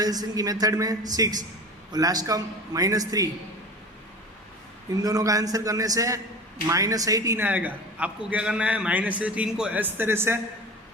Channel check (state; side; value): normal; both; correlation 0.35